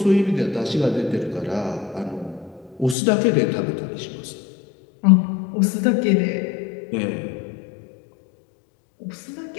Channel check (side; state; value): right; drops out; at 3.0 s